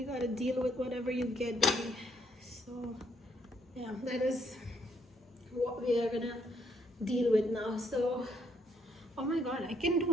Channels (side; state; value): both; normal; correlation 0.72